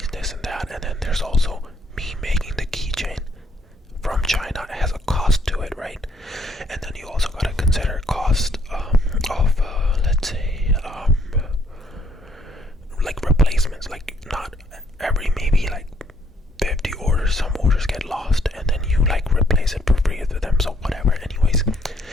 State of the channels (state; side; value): normal; both; correlation 0.69